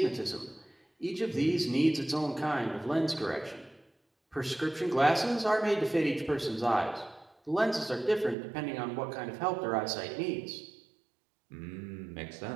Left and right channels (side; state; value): left; drops out; at 8.3 s